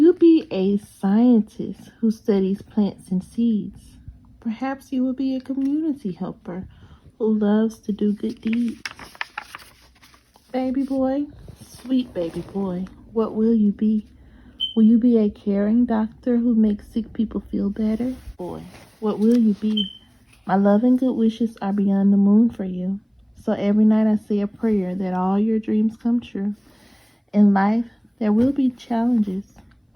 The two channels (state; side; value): identical; both; correlation 1.00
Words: be a scientist who studies plants and seeds? Perhaps you will be a community helper who loves to do good deeds. Baby boy, sweet baby boy, what will you be? Will you be a caring doctor who makes sick people feel better? Boy, what will you be? My love and good wishes are beyond the moon for you. So every night I say a prayer that all your dreams come true. In life, there will be challenges,